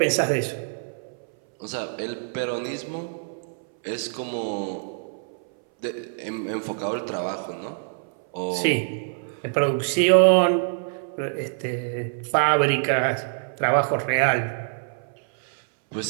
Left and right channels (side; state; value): left; silent; 61 dB below the other